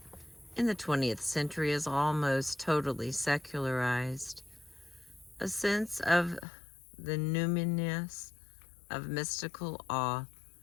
in the 20th century as almost totally secularized, a sense of the numinous of mystical awe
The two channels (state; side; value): drops out; right; at 6.5 s